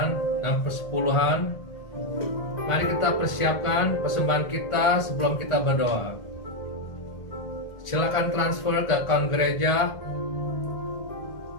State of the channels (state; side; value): late; right; 1.5 ms